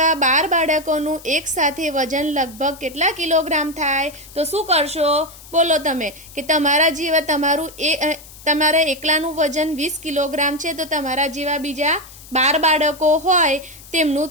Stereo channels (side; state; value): left; noise; hiss, 19 dB below the sound